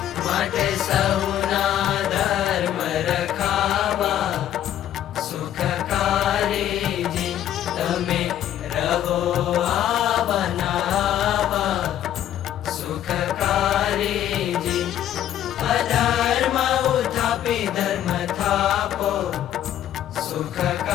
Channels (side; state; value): right; quieter; 11.3 dB